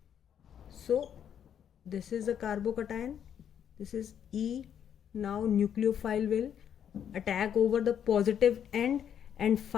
So this is the carbocation, this is E. Now nucleophile will attack over the positive end, and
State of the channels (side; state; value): right; quieter; 8.9 dB